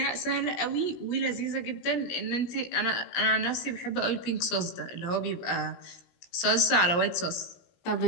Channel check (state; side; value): late; right; 17 ms